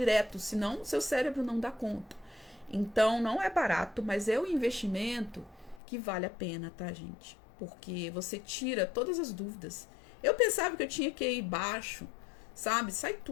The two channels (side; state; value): right; drops out; at 5.8 s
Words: senão seu cérebro não dá conta. Então, não é barato, mas é um investimento que vale a pena, tá, gente? Porque você tira todas as dúvidas. Eu pensava que eu tinha que ir baixo, sabe? Sai